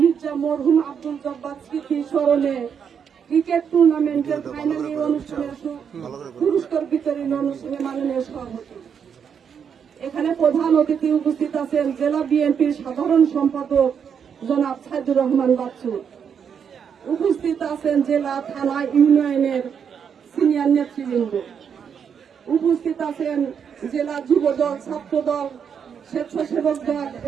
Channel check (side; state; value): left; quieter; 7.3 dB